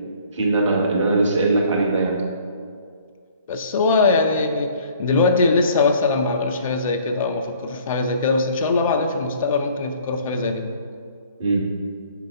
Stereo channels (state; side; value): inverted; both; correlation -0.55